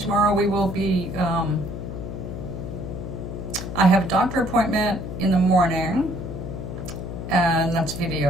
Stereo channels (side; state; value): left; noise; hum, 7 dB below the sound